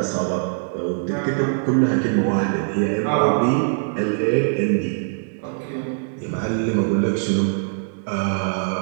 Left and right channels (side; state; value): left; silent; digital silence